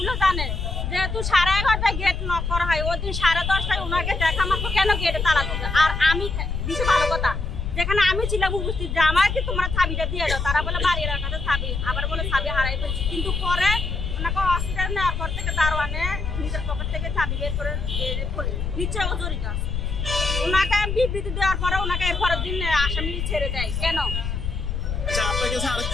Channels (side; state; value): left; noise; rumble, 3 dB below the sound